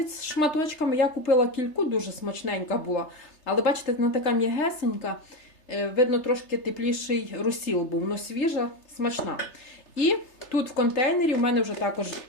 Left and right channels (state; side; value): late; right; 3.3 ms